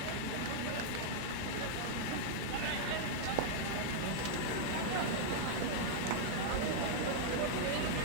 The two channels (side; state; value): both; different; correlation -0.02